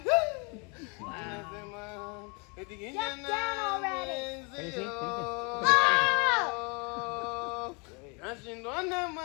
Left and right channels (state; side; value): quieter; right; 32.9 dB